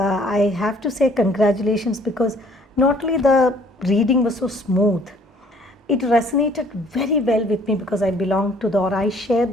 have to say congratulations, because not only the reading was so smooth, it resonated very well with me because I belong to I share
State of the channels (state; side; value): normal; both; correlation 0.58